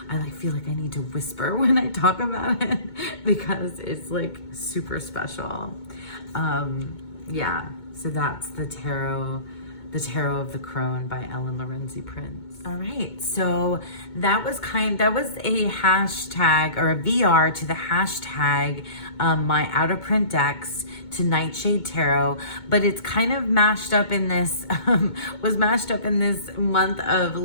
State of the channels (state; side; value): late; right; 2.2 ms